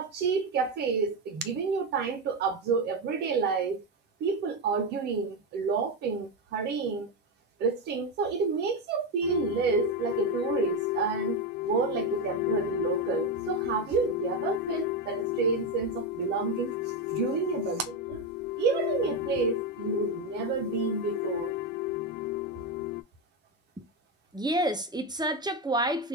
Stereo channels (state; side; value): normal; both; correlation 0.11